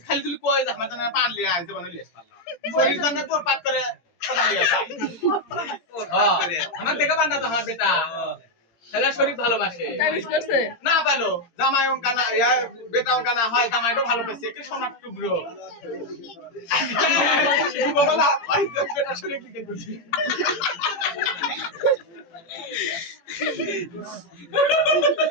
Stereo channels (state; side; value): late; right; 18 ms